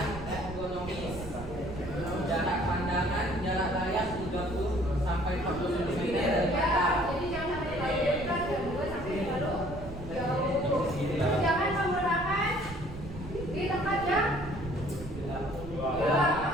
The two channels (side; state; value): right; noise; rumble, 12 dB below the sound